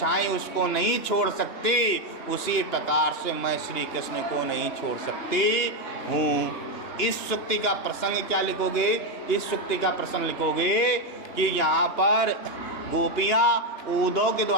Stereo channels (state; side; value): late; right; 2.9 ms